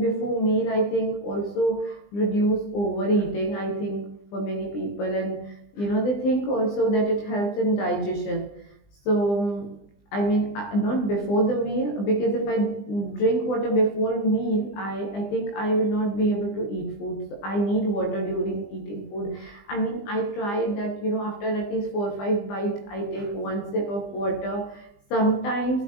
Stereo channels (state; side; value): late; right; 20 ms